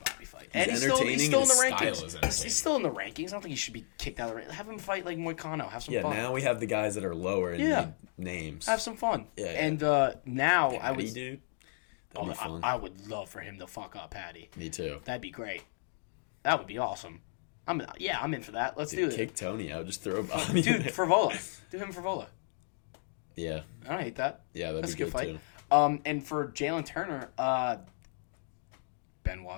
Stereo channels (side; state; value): right; silent; digital silence